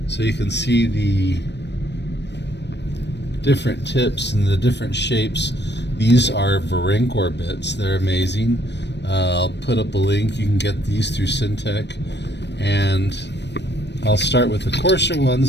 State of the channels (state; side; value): late; right; 0.50 ms